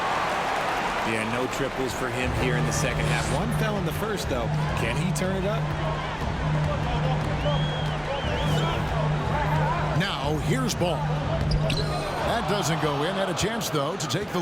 Yeah, no triples for him here in the second half. One fell in the first, though. Can he turn it up? Now, here's ball. That doesn't go in. Had a chance, though, to take the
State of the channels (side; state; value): both; identical; correlation 1.00